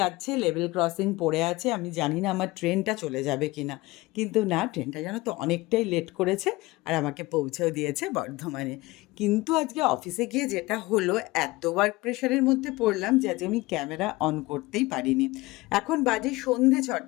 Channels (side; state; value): right; quieter; 20.8 dB